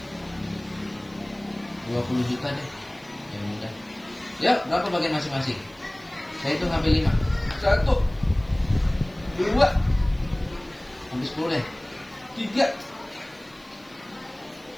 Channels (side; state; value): right; noise; hiss, 29 dB below the sound